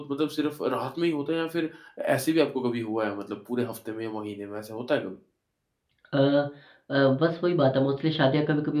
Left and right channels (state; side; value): identical; both; correlation 1.00